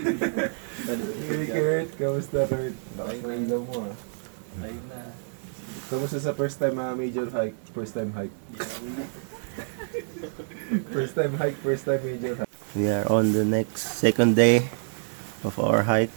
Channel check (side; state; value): left; silent; 60 dB below the other